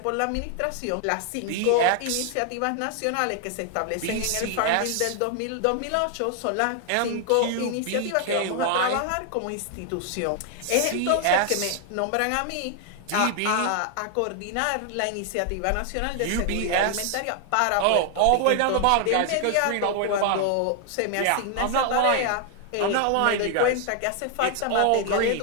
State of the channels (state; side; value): different; both; correlation 0.00